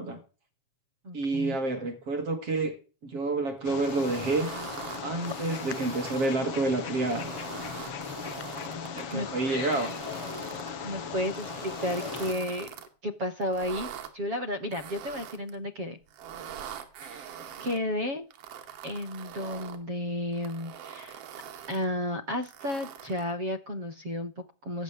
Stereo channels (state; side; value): late; left; 7.3 ms